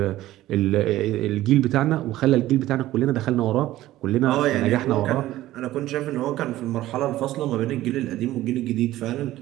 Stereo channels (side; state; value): left; quieter; 15.3 dB